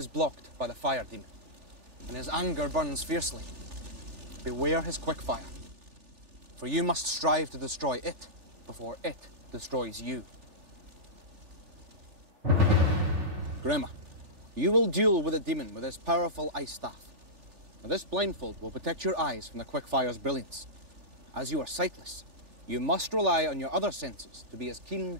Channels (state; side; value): late; left; 3.4 ms